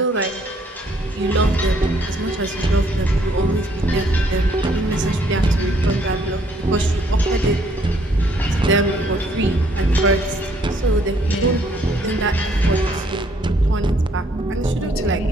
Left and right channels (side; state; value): both; normal; correlation 0.66